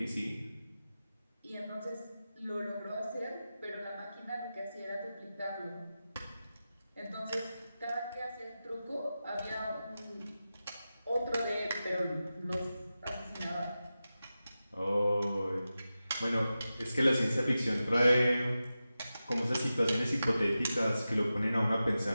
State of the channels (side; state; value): both; inverted; correlation -0.93